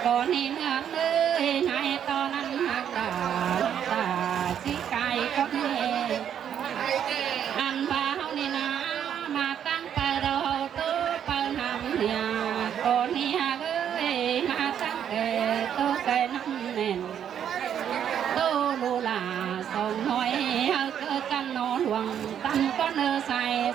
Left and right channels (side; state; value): left; quieter; 9.1 dB